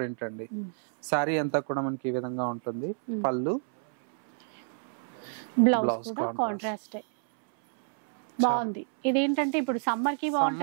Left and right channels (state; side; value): silent; left; 59 dB below the other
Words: అండి. సారీ అంతా కూడా మనకి ఈ విధంగా ఉంటుంది. పళ్ళు, బ్లౌజ్ కాంట్రాస్ట్ బాగుంది. ఇదేంటంటే ఇప్పుడు సమ్మర్ కి